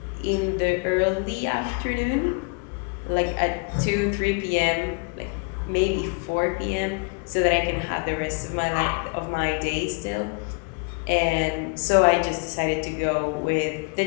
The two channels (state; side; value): quieter; right; 33.5 dB